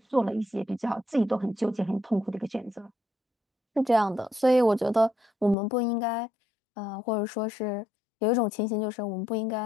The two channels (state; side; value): drops out; right; at 5.6 s